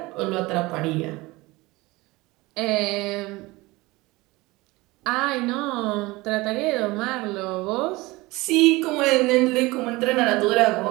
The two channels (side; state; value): left; quieter; 21.5 dB